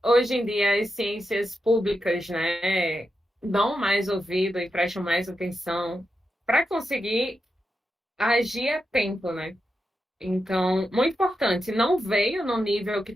hoje em dia as ciências públicas, né, dão mais ouvido e prestam mais atenção para conseguir agir a tempo, né? Então, muito importante, não veio no nível que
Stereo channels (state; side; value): normal; both; correlation 0.87